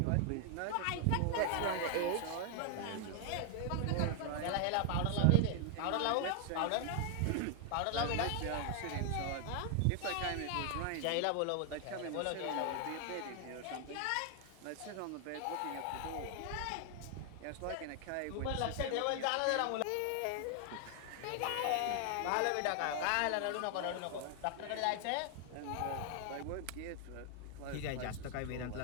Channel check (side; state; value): both; different; correlation 0.00